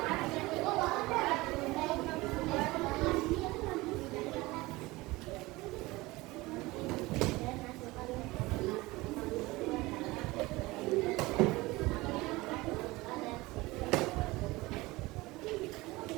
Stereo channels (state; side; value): quieter; left; 21.0 dB